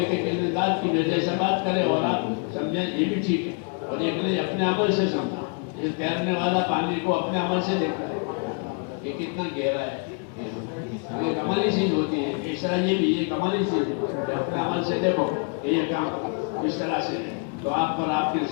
کے کسی ذات کی وجہ سے بات کرے اور آپ سمجھیں یہ بھی ٹھیک ہے، اور ایک لے اپنے عمل سے سمجھیں۔ یہ تیرنے والا پانی کو اپنے عمل سے دیکھتا ہے، یہ کتنا گہرا ہے، یہ کمالی چیز ہوتی ہے۔ اس طرح یہ بھی یہ کمالی چیز ہے کہ اپنے عمل سے دیکھو کہ یہ کام اس طرح سے ہے، تو آپ پر آپ کی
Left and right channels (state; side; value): quieter; right; 38.1 dB